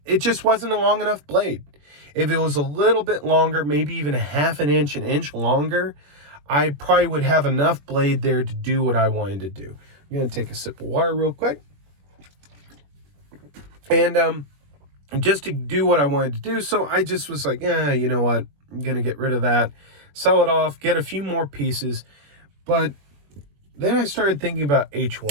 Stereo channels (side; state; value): left; late; 21 ms